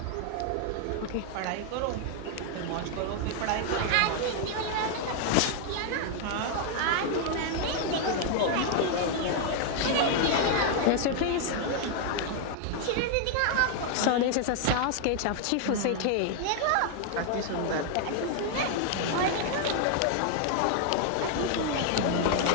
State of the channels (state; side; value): different; both; correlation 0.00